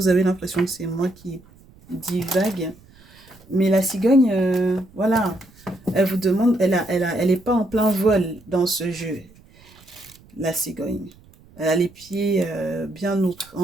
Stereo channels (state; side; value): noise; right; rumble, 26 dB below the sound